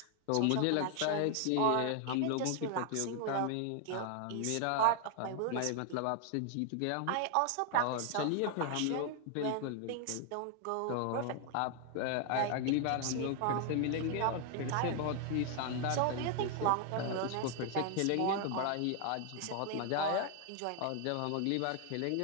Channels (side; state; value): both; different; correlation 0.00